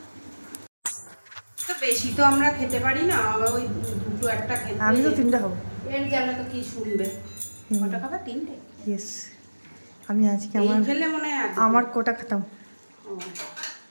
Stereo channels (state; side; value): inverted; both; correlation -1.00